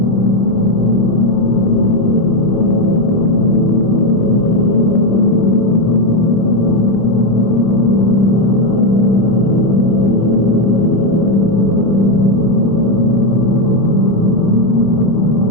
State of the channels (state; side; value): late; right; 25 ms